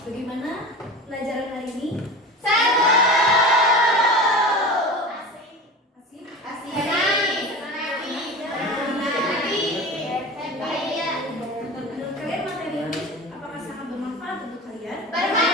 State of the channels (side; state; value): both; normal; correlation 0.32